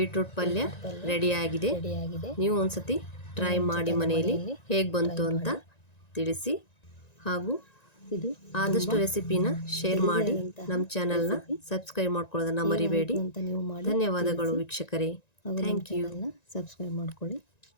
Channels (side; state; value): right; late; 1.9 ms